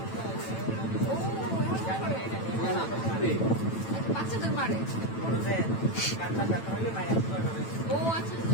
বাচ্চাদের মারে ও আচ্ছা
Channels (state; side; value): late; right; 9.0 ms